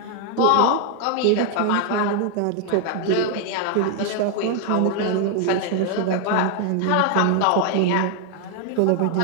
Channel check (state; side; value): different; both; correlation 0.00